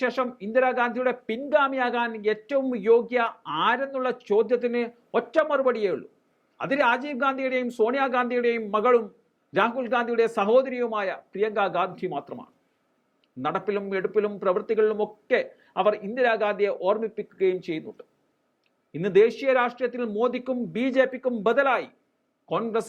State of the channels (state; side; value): identical; both; correlation 1.00